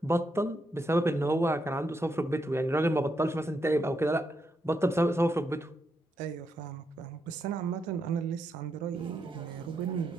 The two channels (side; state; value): both; normal; correlation 0.81